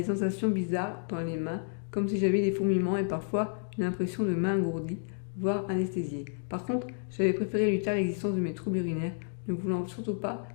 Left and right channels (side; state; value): right; silent; digital silence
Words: sensations bizarres dans les mains, comme si j'avais des fourmillements et parfois une impression de main engourdie, voire anesthésiée. Par contre, j'avais préféré lui taire l'existence de mes troubles urinaires, ne voulant surtout pas